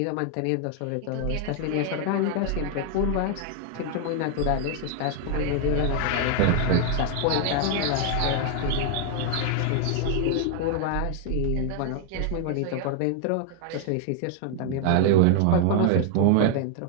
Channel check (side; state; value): both; different; correlation 0.00